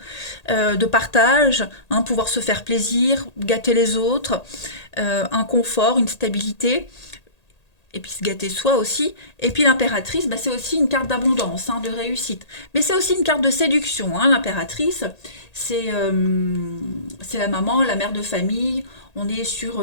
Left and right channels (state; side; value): late; right; 1.8 ms